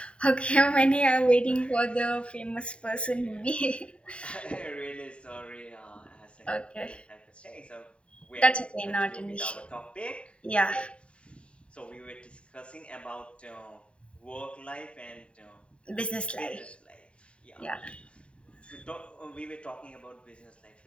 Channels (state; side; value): late; right; 0.058 ms